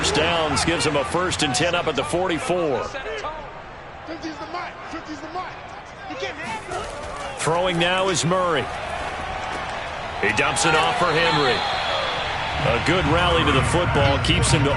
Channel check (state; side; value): identical; both; correlation 1.00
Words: downs gives them a 1st and 10 up at the 44. Throwing now is Murray. He dumps it off for Henry. A good rally to the football keeps him to